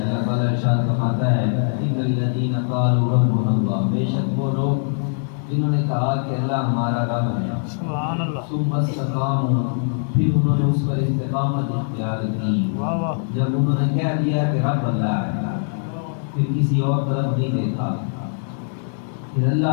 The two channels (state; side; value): silent; right; digital silence